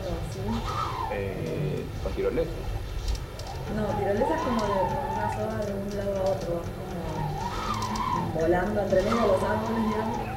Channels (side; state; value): both; identical; correlation 1.00